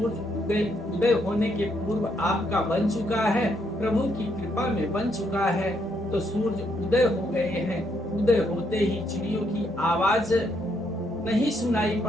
उदय होने के पूर्व आपका बन चुका है, प्रभु की कृपा में बन चुका है। तो सूर्य उदय हो गए हैं। उदय होते ही चिड़ियों की आवाज नहीं सुनाई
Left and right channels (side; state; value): both; normal; correlation 0.74